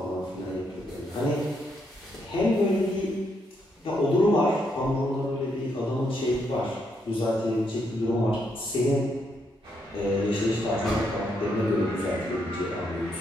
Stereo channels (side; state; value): both; normal; correlation 0.77